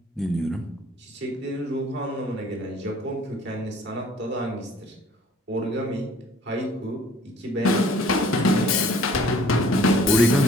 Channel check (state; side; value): normal; both; correlation 0.54